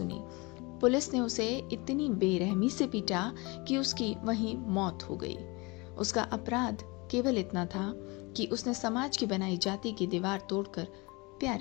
पुलिस ने उसे इतनी बेरहमी से पीटा कि उसकी वहीं मौत हो गई। उसका अपराध केवल इतना था कि उसने समाज की बनाई जाति की दीवार तोड़कर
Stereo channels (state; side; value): quieter; right; 26.3 dB